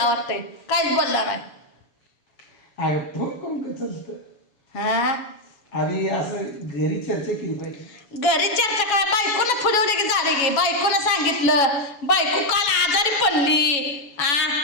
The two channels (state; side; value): late; right; 7.1 ms